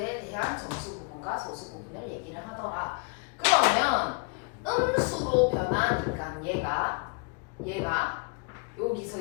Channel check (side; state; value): right; quieter; 33.9 dB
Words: 대한 정수 부분과 소수 부분을 얘기를 하더라. 그러면 음수로 변하니까 얘가 여기서